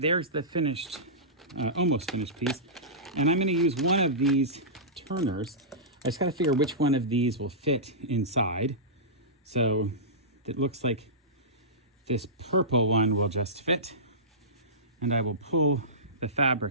the finished, almost finished piece. And I'm going to use one of these turners. I just got to figure which one of these will fit inside. So it looks like this purple one will just fit. And I will pull the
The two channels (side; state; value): both; normal; correlation -0.19